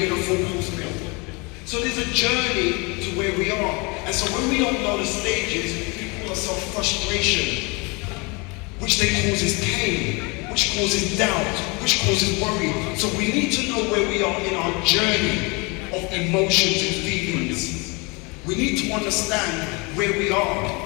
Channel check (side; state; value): right; quieter; 28.6 dB